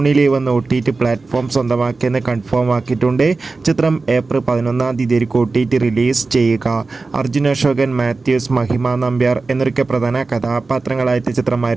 ലീവ് എന്ന OTT പ്ലാറ്റ്ഫോം സ്വന്തമാക്കിയെന്ന് കൺഫേം ആക്കിയിട്ടുണ്ട്. ചിത്രം ഏപ്രിൽ 11-ാം തീയതി OTT റിലീസ് ചെയ്യുക. അർജുൻ അശോകൻ, മാത്യൂസ്, മഹിമ നമ്പ്യാർ എന്നൊക്കെ പ്രധാന കഥാപാത്രങ്ങളായ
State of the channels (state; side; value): quieter; left; 3.8 dB